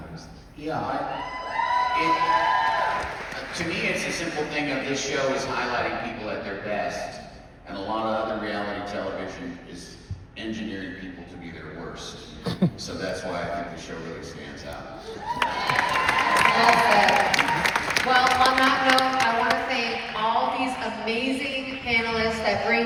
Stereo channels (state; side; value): identical; both; correlation 1.00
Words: Yeah, to me, it's a simple thing of this show is highlighting people at their best, and a lot of other reality television is engineering people to be their worst. So that's why I think the show really stands out. Well, on that note, I want to thank all these amazing panelists that